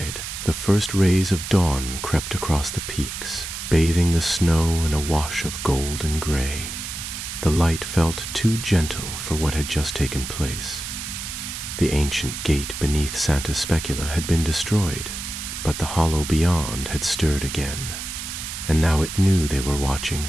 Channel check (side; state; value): right; noise; hiss, 7 dB below the sound